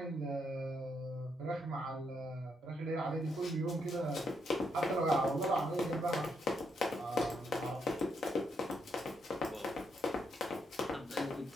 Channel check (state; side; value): normal; both; correlation 0.78